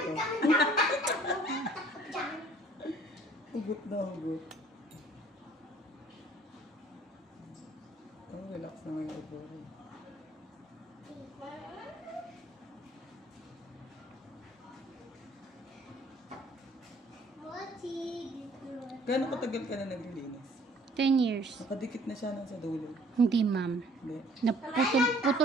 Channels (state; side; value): normal; both; correlation 0.57